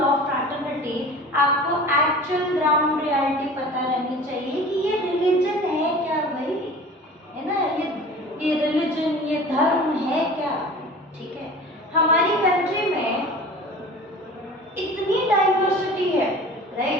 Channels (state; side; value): normal; both; correlation 0.40